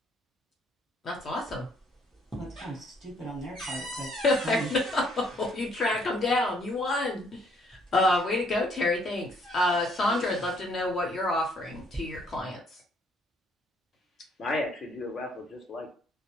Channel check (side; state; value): both; normal; correlation 0.65